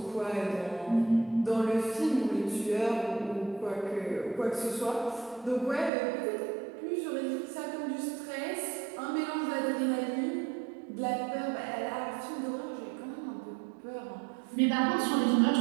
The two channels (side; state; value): left; drops out; at 5.9 s